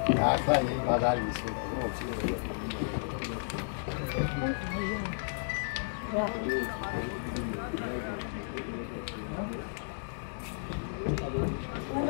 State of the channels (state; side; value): silent; right; digital silence